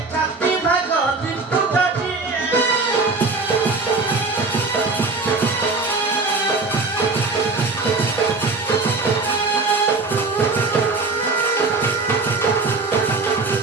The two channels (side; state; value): left; quieter; 3.8 dB